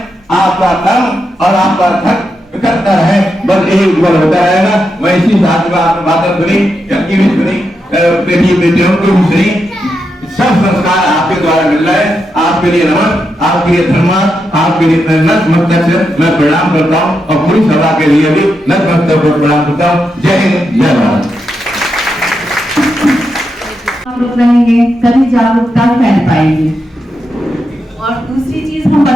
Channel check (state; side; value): normal; both; correlation 0.85